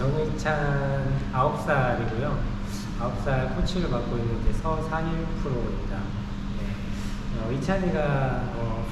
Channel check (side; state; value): both; identical; correlation 1.00